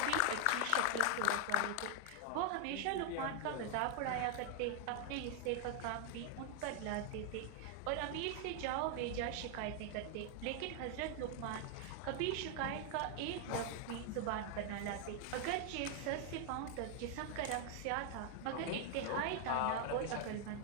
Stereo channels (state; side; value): different; both; correlation 0.00